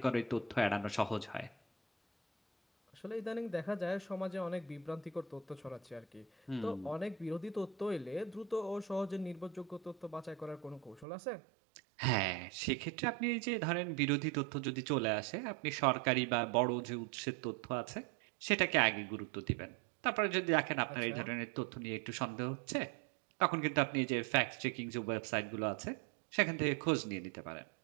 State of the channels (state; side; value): drops out; left; at 11.1 s